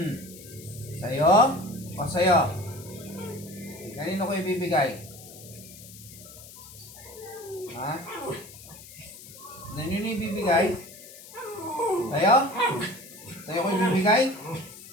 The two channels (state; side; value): noise; left; hiss, 17 dB below the sound